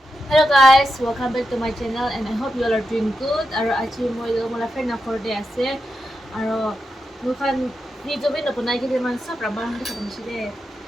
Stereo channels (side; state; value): both; normal; correlation 0.87